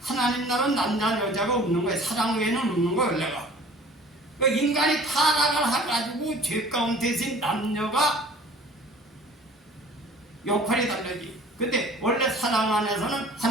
하나님 나라는 남자 여자가 없는 거예요. 사랑 외에는 없는 거예요. 원래가. 그러니까 인간이 타락을 해가지고 죄 가운데서 남녀가 역할이 다르지. 근데 원래 사랑 안에서는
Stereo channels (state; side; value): normal; both; correlation 0.48